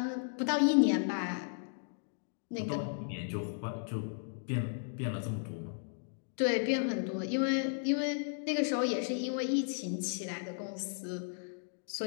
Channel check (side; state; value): right; silent; digital silence